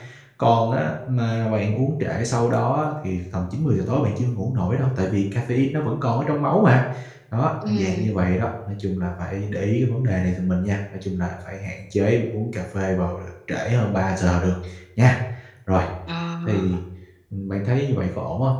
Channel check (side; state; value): both; identical; correlation 1.00